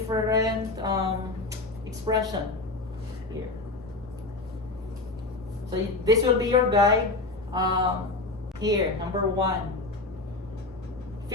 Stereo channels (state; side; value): quieter; right; 3.3 dB